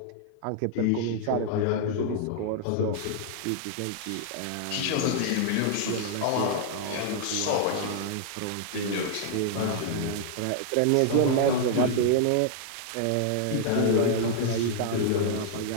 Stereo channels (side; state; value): both; different; correlation -0.01